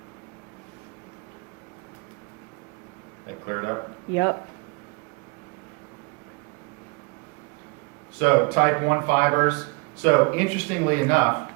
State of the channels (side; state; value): left; quieter; 28.8 dB